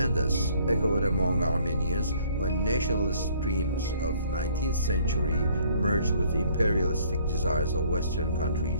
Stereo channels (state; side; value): inverted; both; correlation -0.59